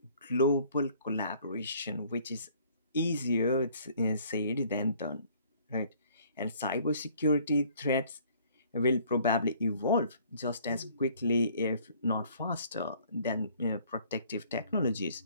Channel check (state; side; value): inverted; both; correlation -0.58